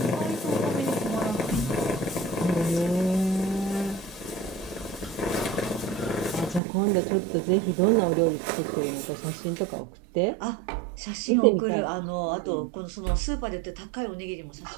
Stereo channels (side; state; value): left; drops out; at 6.6 s